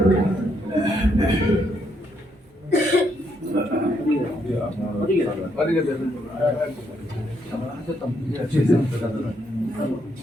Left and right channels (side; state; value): both; normal; correlation 0.75